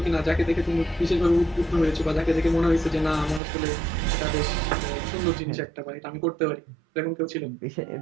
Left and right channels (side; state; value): left; drops out; at 3.4 s